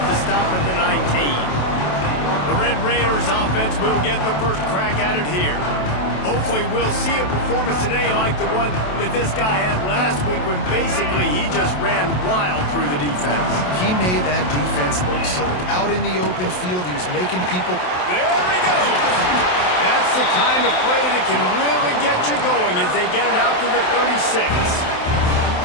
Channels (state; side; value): late; right; 27 ms